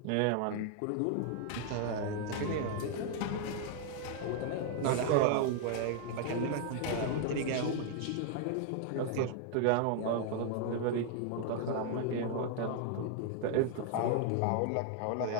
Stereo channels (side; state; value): both; different; correlation 0.00